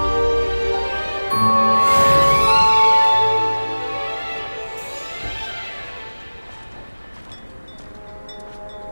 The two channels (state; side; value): inverted; both; correlation -1.00